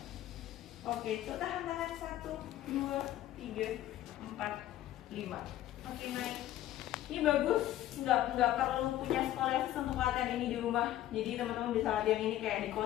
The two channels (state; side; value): quieter; right; 13.5 dB